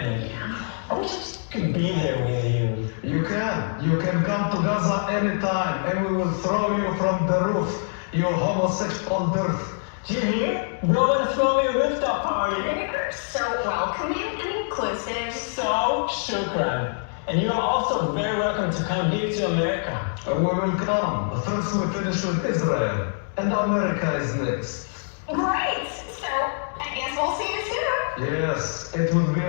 I wish I just could be there with you. You can come to Gaza anytime, and we will throw you from the roof, you homosexual dirt. Do you hear? Bro, wanna throw me a rooftop party. You're so welcoming and inclusive. So, shukran. And you are also very welcome to come here to America. We will come. First we finish with Israel, and America is next. Great. So, I guess we'll see you soon. Yes, it will be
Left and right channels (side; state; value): right; silent; digital silence